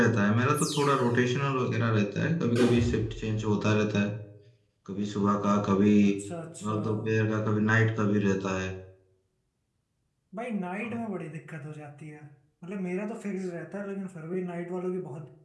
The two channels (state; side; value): identical; both; correlation 1.00